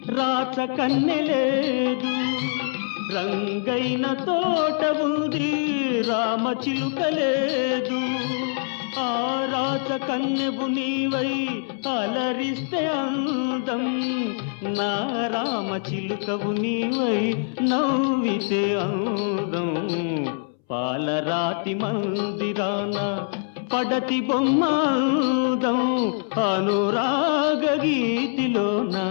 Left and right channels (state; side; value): silent; right; 63 dB below the other